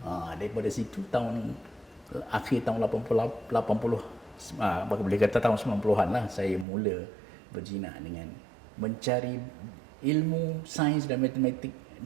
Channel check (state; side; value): drops out; left; at 6.7 s